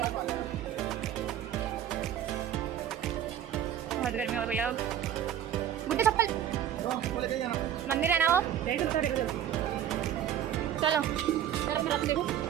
बहुत गर्मी हो गई अब। गुड्डे चप्पल मंदिर है ना वो, चलो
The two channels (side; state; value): left; quieter; 10.4 dB